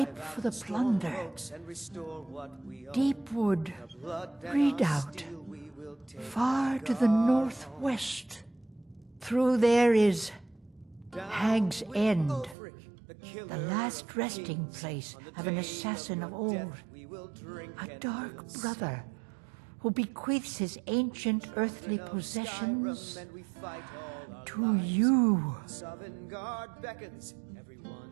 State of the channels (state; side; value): drops out; left; at 12.6 s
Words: for the plunder. Deep wood, redoubt, far to the northwest. Through there is Hag's End, the last resting place of an assassin of old, a dark brother who bequeaths his ancient earthly possessions to you.